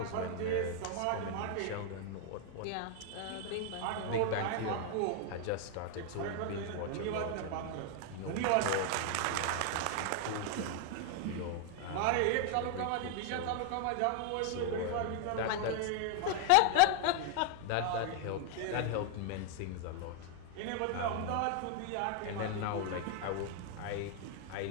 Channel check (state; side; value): different; both; correlation 0.00